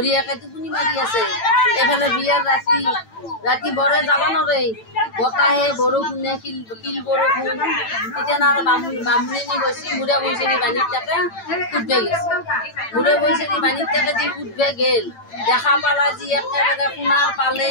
টোপনি মাৰি আছে এইফালে বিয়াৰ ৰাতি বৰে যাব নোৱাৰে বতাহে বৰষুণে কিল বৰষুণ তেতিয়া আৰু বামুণী গৈছে মুড়া বৈচেৰি বাণীত তাকে কুটবে গৈছে মুড়া বৈচেৰি বাণীত তাকে যি কুটবে গেল দেখা পালা যি একেবাৰে সোণাৰ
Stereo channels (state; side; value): late; right; 8.9 ms